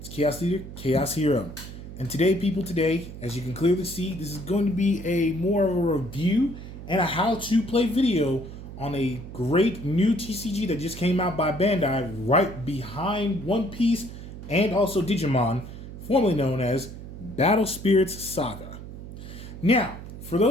Chaos Leader, Chaos Hero. And today, people, as you can clearly see, this is going to be a more of a review and a how-to play video on a great new TCG that just came out by Bandai right behind One Piece and also Digimon, formerly known as Battle Spirits Saga. Now, for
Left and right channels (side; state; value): right; noise; hum, 12 dB below the sound